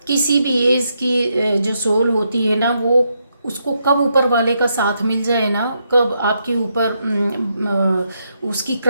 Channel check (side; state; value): both; inverted; correlation -0.80